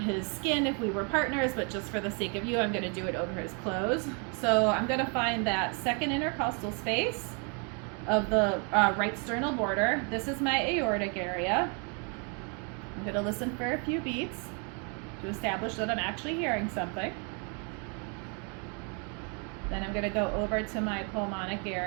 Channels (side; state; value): left; quieter; 36.8 dB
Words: skin if we were partners, but just for the sake of you, I'm going to do it over his clothes. So I'm going to find that second intercostal space of the right sternal border. This is my aortic area. I'm going to listen for a few beats to establish that I'm actually hearing something. Then I'm going to go over to my pulmonic